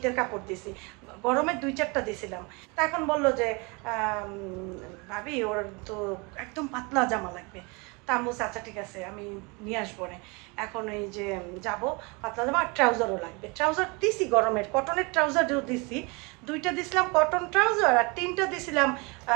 কাপড় দিছি, গরমের 2-4টা দিছিলাম। তা এখন বললো যে ভাবি ওর তো একদম পাতলা জামা লাগবে। তা আমি বলছি আচ্ছা ঠিক আছে আমি নিয়ে আসবো না। এখন এই যে যাব, পাতলা জামা আর ট্রাউজারও লাগবে। ট্রাউজার দিছি গরমের, কটনের ট্রাউজারও দিছি, 2টা দিছিলাম কটন ট্রাউজার আর 3টা দিছিলাম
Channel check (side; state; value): left; quieter; 29.0 dB